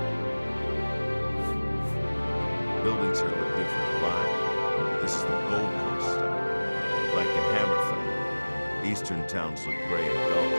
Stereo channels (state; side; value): inverted; both; correlation -1.00